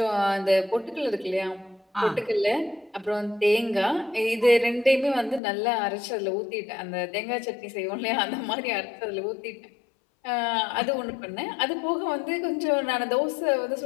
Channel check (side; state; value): right; drops out; at 5.4 s